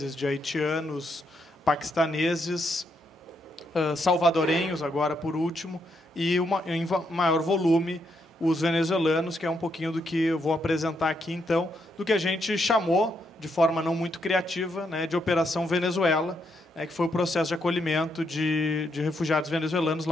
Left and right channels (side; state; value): both; normal; correlation 0.78